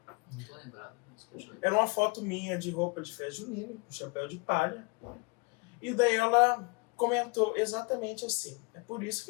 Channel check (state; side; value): quieter; right; 29.3 dB